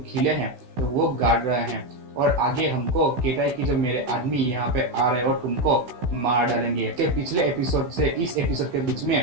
खिले हैं तो वो गाड़ रहे हैं। और आगे हमको कहता है कि जो मेरे आदमी यहाँ पे आ रहे हैं और तुमको मार डालेंगे। इसके पिछले एपिसोड से इस एपिसोड के बीच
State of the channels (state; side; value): late; left; 16 ms